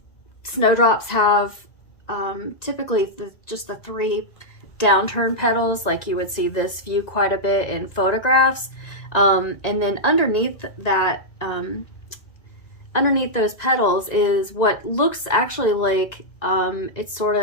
Snowdrops have typically just the 3 downturn petals, like you would see this view quite a bit in photographs. And then underneath that, underneath those petals is what looks actually like it's sort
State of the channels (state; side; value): late; right; 1.9 ms